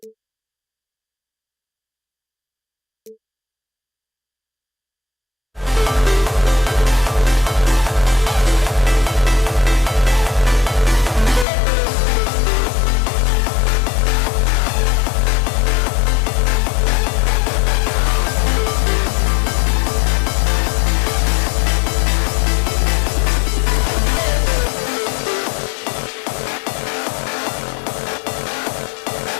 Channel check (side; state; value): right; drops out; at 11.5 s